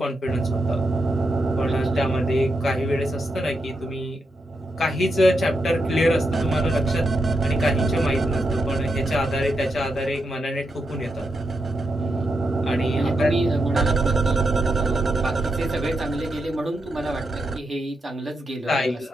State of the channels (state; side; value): normal; both; correlation 0.84